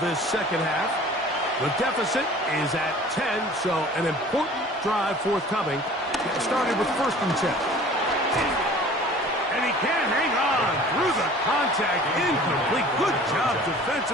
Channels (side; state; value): both; normal; correlation 0.46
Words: this second half. The deficit is at 10, so an important drive forthcoming. Started with 1st and 10. And he can't hang on through the contact. Incomplete. Good job